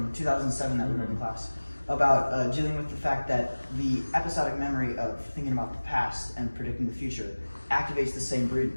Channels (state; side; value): inverted; both; correlation -1.00